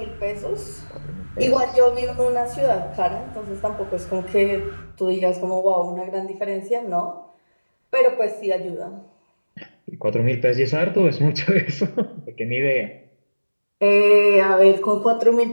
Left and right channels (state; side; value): inverted; both; correlation -1.00